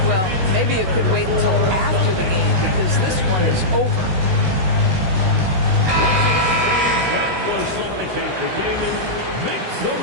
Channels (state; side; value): late; left; 16 ms